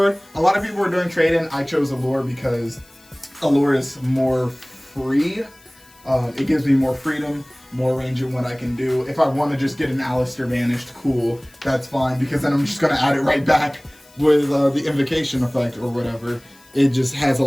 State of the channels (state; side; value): noise; left; hiss, 27 dB below the sound